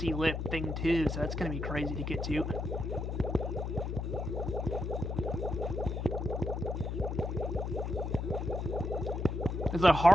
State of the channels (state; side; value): noise; left; hum, 3 dB below the sound